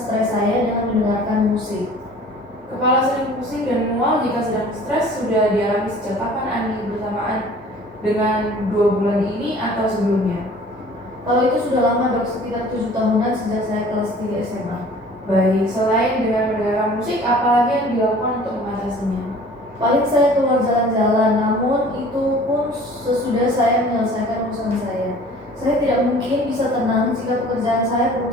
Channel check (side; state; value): both; normal; correlation 0.48